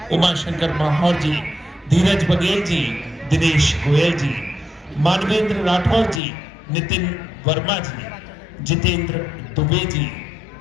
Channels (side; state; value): right; drops out; at 6.2 s